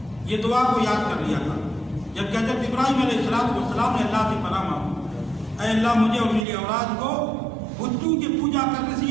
یہ دعا کو یاد کر لیا تھا جب حضرت ابراہیم علیہ السلام نے اللہ سے پناہ مانگی، اے اللہ مجھے اور میری اولاد کو بتوں کی پوجا کرنے سے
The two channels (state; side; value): drops out; left; at 6.5 s